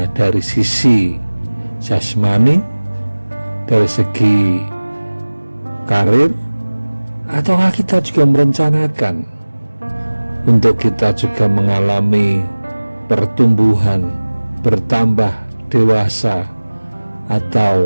dari sisi jasmani, dari segi karir, ataukah kita juga merencanakan untuk kita juga mengalami pertumbuhan, bertambah dewasa,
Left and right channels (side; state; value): both; inverted; correlation -1.00